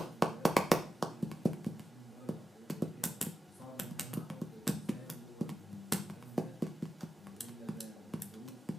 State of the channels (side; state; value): both; normal; correlation 0.93